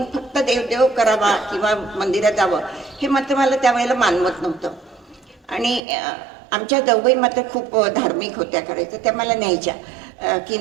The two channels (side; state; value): left; drops out; at 5.8 s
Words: फक्त देवदेव करावा किंवा मंदिरात जावं हे मात्र मला त्यावेळेला मानवत नव्हतं. आणि आमच्या जाऊबाई मात्र खूप धार्मिक होत्या, करायचं त्या मला न्यायच्या की